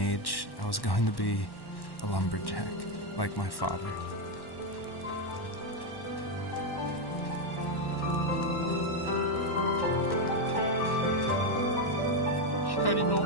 I was going to be a lumberjack, like my father. 光の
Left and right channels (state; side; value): late; right; 1.1 ms